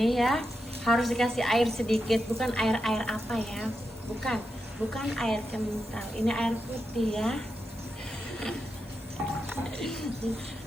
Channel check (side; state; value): both; normal; correlation 0.87